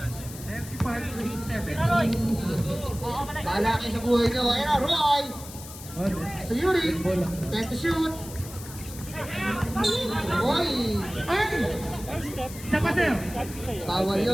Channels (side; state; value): left; noise; hiss, 14 dB below the sound